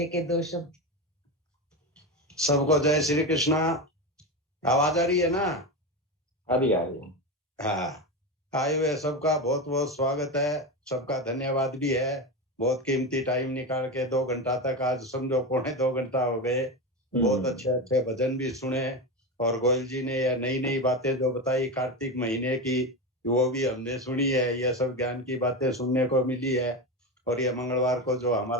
2 शब्द। सबको जय श्री कृष्णा। आवाज आ रही है ना? आ रही है। हाँ, आए हुए सबका बहुत बहुत स्वागत है, सबका धन्यवाद भी है। बहुत कीमती टाइम निकाल के 2 घंटा तक, आज समझो 2.25 घंटा हो गए, बहुत अच्छे अच्छे भजन भी सुने। और गोयल जी ने यह नई नई बातें जो बताई कार्तिक महीने की, वो भी हमने सुनी है। यह सब ज्ञान की बातें सुनने को मिली है। और ये मंगलवार को जो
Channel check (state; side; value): normal; both; correlation 0.18